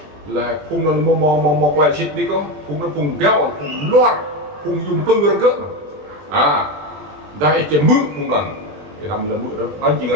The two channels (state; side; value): late; left; 20 ms